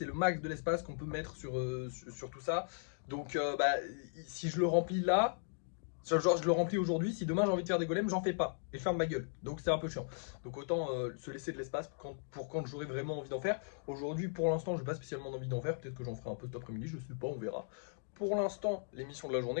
le max de l'espace qu'on peut mettre sur tout ça. Donc si je le remplis là, genre je le remplis aujourd'hui, si demain j'ai envie de faire des golems, j'en fais pas et je ferme ma gueule, donc c'est un peu chiant. Donc autant se laisser de l'espace pour quand j'aurai vraiment envie d'en faire. Aujourd'hui pour l'instant j'ai pas spécialement envie d'en faire, peut-être que j'en ferai un peu cet après-midi, je sais pas, on verra. Pour l'instant, l'émission de la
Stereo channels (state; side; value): silent; right; digital silence